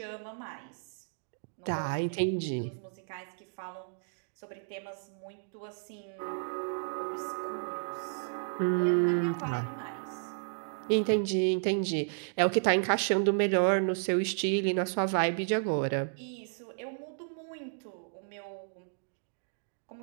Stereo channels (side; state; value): left; silent; digital silence